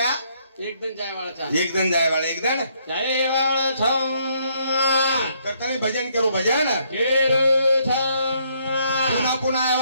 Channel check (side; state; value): both; inverted; correlation -0.70